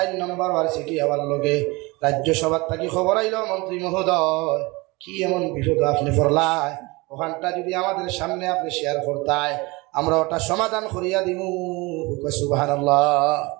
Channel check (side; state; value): left; quieter; 24.3 dB